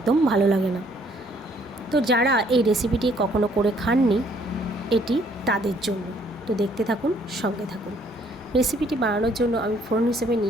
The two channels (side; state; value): both; normal; correlation 0.64